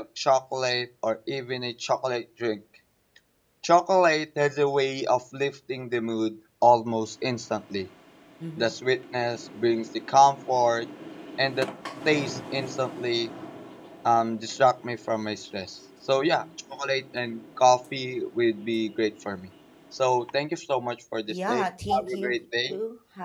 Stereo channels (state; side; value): identical; both; correlation 1.00